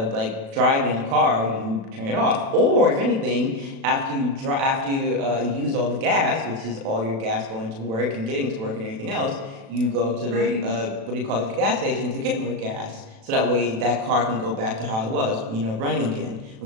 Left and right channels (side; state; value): left; late; 36 ms